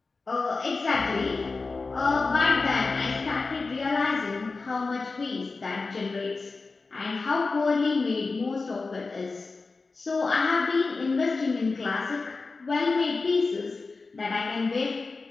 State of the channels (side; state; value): right; quieter; 4.0 dB